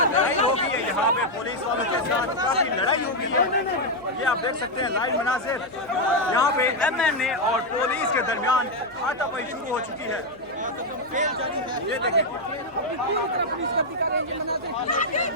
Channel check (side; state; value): left; noise; hum, 26 dB below the sound